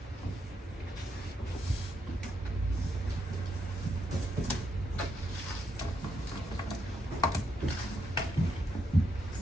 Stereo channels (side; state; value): both; normal; correlation 0.79